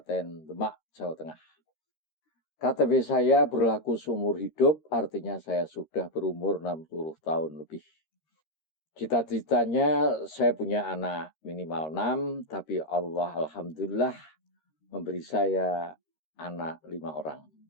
Demak, Jawa Tengah. KTP saya berlaku seumur hidup, artinya saya sudah berumur 60 tahun lebih. Cita-citanya saya punya anak minimal 6, tapi Allah alhamdulillah memberi saya anak 5 orang.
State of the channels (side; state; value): right; late; 13 ms